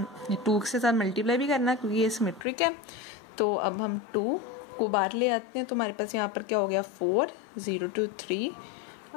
2 के साथ मल्टीप्लाई भी करना है क्योंकि ये सिमेट्रिक है। तो अब हम 2 को बाहर ले आते हैं तो हमारे पास यहाँ पर क्या हो गया 4 0 to 3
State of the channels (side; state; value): right; drops out; at 2.5 s